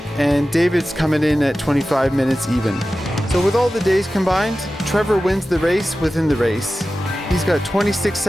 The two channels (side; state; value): both; normal; correlation 0.95